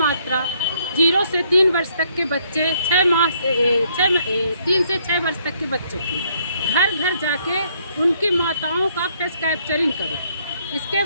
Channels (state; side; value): inverted; both; correlation -0.69